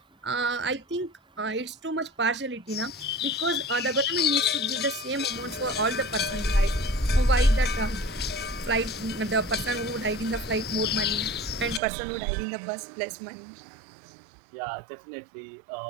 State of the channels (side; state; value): left; drops out; at 11.8 s